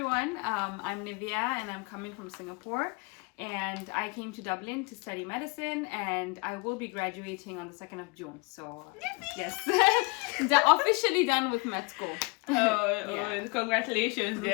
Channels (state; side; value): quieter; right; 29.4 dB